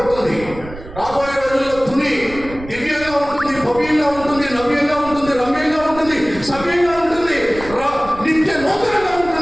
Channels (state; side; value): noise; right; rumble, 15 dB below the sound